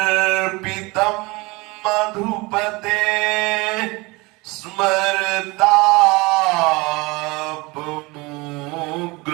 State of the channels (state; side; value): quieter; left; 24.5 dB